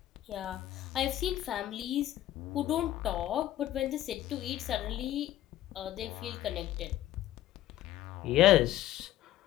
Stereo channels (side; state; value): right; quieter; 13.7 dB